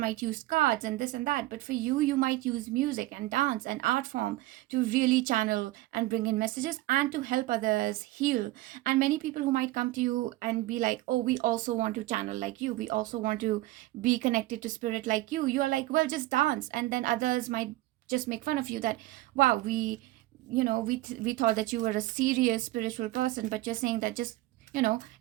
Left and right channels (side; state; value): left; quieter; 17.9 dB